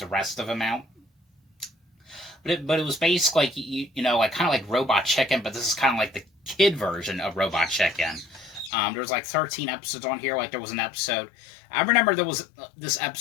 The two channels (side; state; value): right; drops out; at 8.7 s